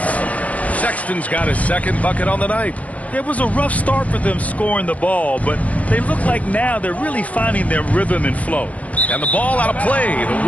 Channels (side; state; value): right; late; 0.068 ms